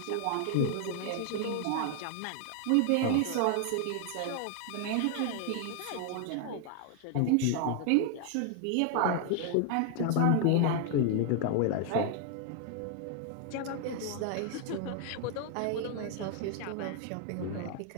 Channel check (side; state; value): both; different; correlation 0.00